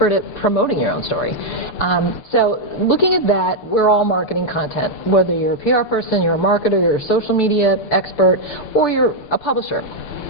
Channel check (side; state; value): right; late; 6.8 ms